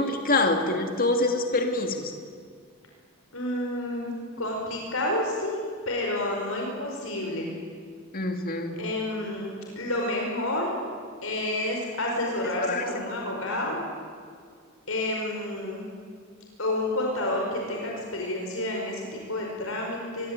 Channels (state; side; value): normal; both; correlation -0.02